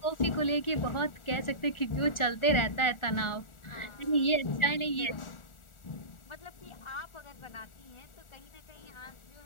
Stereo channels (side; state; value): right; late; 1.4 ms